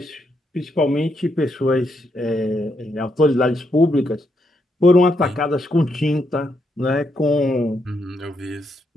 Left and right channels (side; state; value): both; normal; correlation 0.79